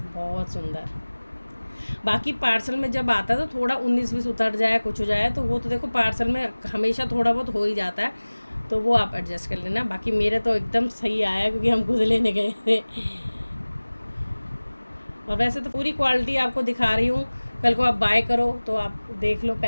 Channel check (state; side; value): inverted; both; correlation -1.00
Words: बहुत सुंदर। बाकी पार्सल में जब आता है तो थोड़ा 19-20 उतर जाए, कुछ हो जाए, तो वो तो देखो पार्सल में हमेशा थोड़ा बहुत हो ही जाता है, तो वो आप एडजस्ट कर लेना। बाकी मेरे तो एकदम सही आया, क्योंकि हम खुद लेने गए थे। और वैसे तो पूरी क्वालिटी आपको दिखा रही हूँ, कल को आप बाय करो तो आप देख लो